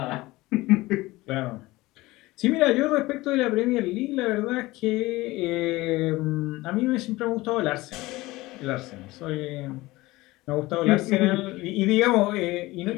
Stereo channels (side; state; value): right; quieter; 19.8 dB